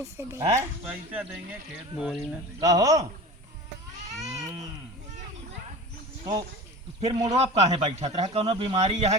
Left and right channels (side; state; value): both; normal; correlation 0.35